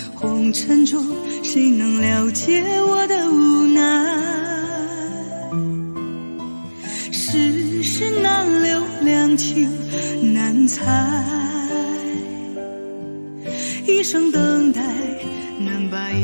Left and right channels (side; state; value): both; inverted; correlation -1.00